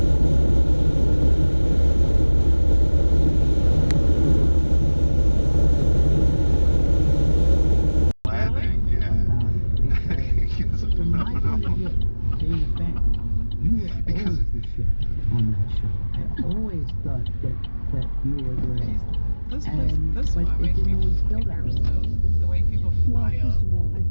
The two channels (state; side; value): inverted; both; correlation -1.00